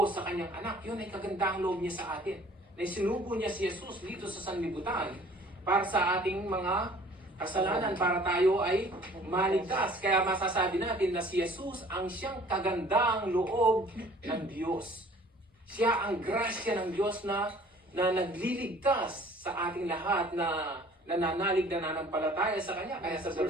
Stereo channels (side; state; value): both; normal; correlation 0.52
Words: sa kanyang anak. Yun ay kagandahang loob niya sa atin. Na sinugo niya si Jesus dito sa sanlibutan para sa ating mga kasalanan, para tayo ay maligtas. Kaya masasabi natin na si Jesus ang siyang kagandahang loob ng Diyos. Siya ang grasya ng Diyos na nagliligtas sa ating lahat na nananalig na nanampalataya sa Kanya. Kaya sa